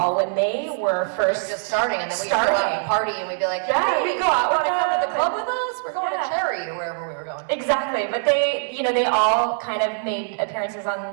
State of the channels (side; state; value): left; silent; 64 dB below the other